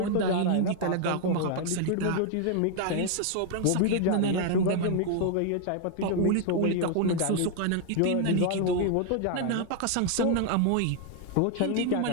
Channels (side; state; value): both; different; correlation 0.00